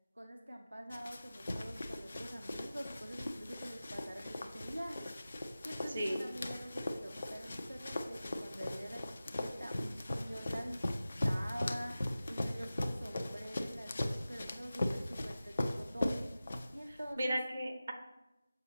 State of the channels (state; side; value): inverted; both; correlation -0.95